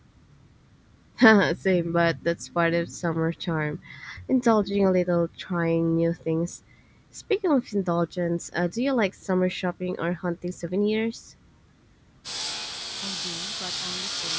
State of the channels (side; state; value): both; identical; correlation 1.00